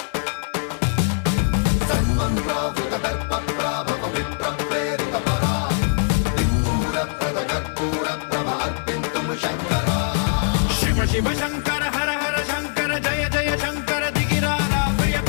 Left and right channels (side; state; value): right; silent; digital silence